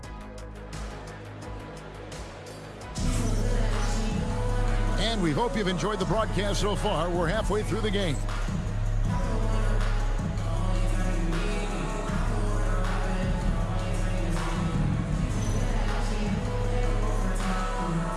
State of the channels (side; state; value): both; identical; correlation 1.00